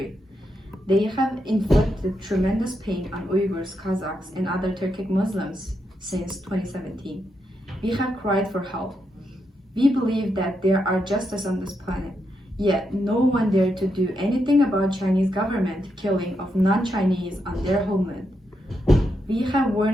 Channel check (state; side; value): normal; both; correlation 0.82